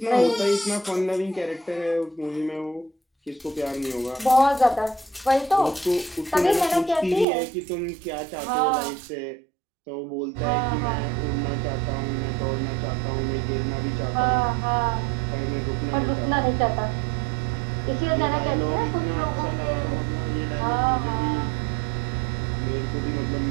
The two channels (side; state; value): left; drops out; at 7.2 s